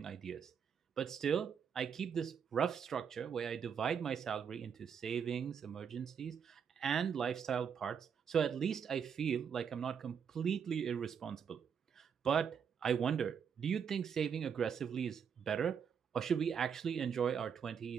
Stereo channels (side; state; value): left; quieter; 7.3 dB